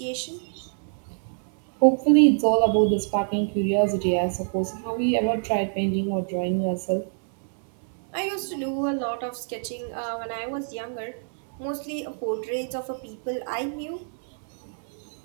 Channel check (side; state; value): left; silent; digital silence